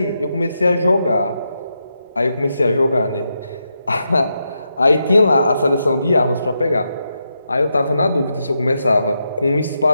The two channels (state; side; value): inverted; both; correlation -0.84